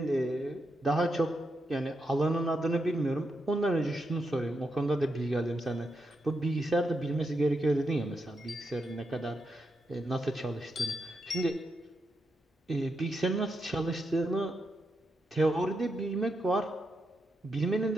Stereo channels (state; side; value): normal; both; correlation 0.84